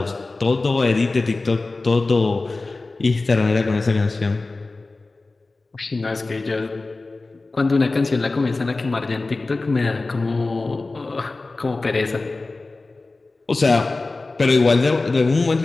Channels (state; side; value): quieter; right; 3.4 dB